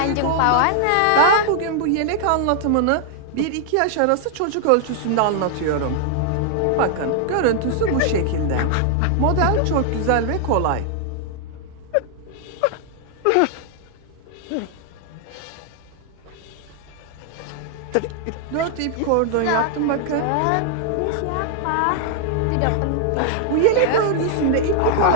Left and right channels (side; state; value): both; different; correlation 0.00